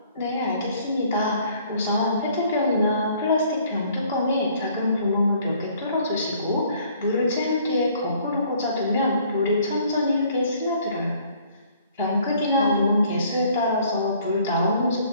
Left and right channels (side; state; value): both; inverted; correlation -0.59